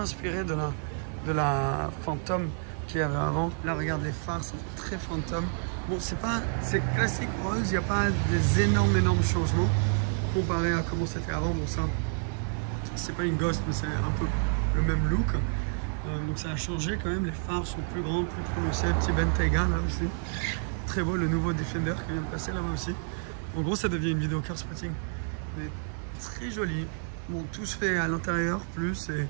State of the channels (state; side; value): silent; left; 58 dB below the other